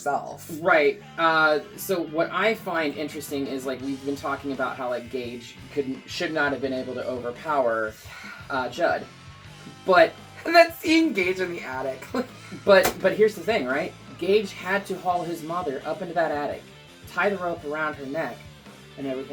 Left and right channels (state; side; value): identical; both; correlation 1.00